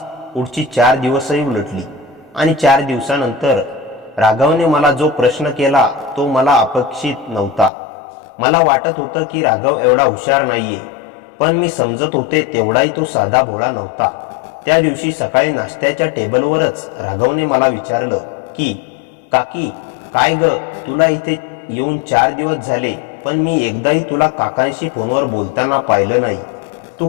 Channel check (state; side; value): drops out; right; at 7.7 s